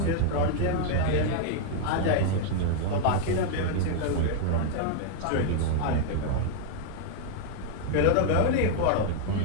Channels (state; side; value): different; both; correlation 0.00